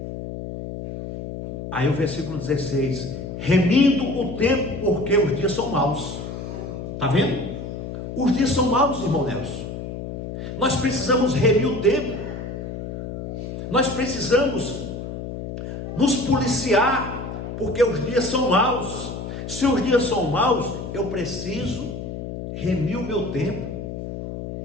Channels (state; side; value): noise; left; hum, 7 dB below the sound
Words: Aí o versículo 16: remindo o tempo, porque os dias são maus. Está vendo? Os dias são maus, irmão Nelson. Nós precisamos remir o tempo. Nós precisamos nos policiar, porque os dias são maus. Se os dias são maus, eu preciso remir o meu tempo.